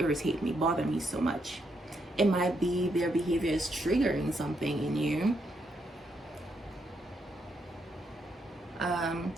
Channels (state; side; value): normal; both; correlation 0.78